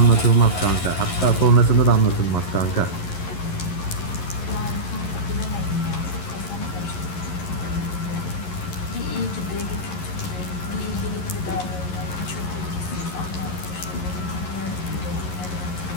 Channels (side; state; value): right; late; 11 ms